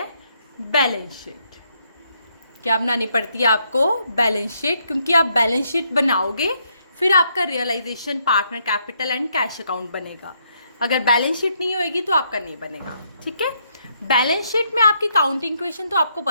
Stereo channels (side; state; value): both; inverted; correlation -0.74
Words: Balance sheet. क्या बनानी पड़ती है आपको? Balance sheet. क्योंकि आप बैलेंस शीट बनाओगे फिर आपका realisation, partner capital and cash account बनेगा. अगर बैलेंस शीट नहीं होएगी तो आपका नहीं बनेगा. ठीक है. बैलेंस शीट में आपकी काउंटिंग इक्वेशन तो आपको